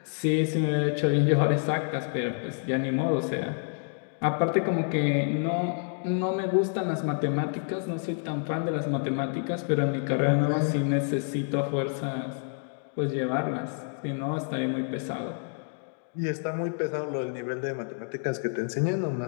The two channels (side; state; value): right; silent; 56 dB below the other